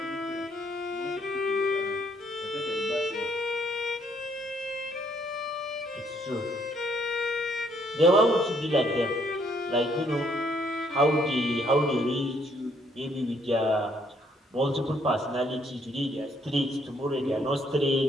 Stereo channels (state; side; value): normal; both; correlation 0.68